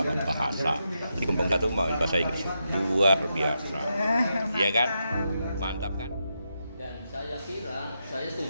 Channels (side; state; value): both; inverted; correlation -0.85